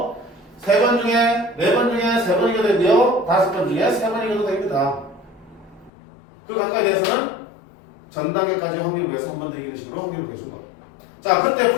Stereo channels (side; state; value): right; drops out; at 5.9 s